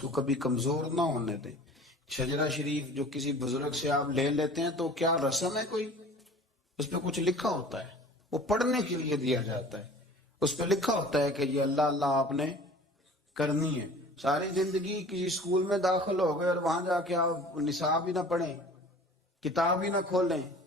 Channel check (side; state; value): both; normal; correlation 0.44